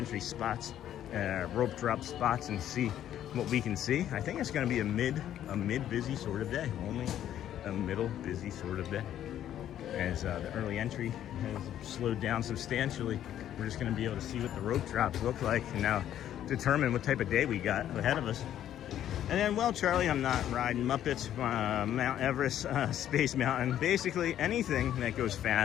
spots, rope drop spots, and see what we can see. I think it's going to be a mid busy sort of day. Only a middle busy sort of day, as the early entry has slowed down substantially. We're just going to be able to see what the rope drops look like, and now determine what type of day we got ahead of us. And then, well, Charlie, I'm not riding Muppets, Mount Everest, Space Mountain, basically anything that goes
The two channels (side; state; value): right; quieter; 11.2 dB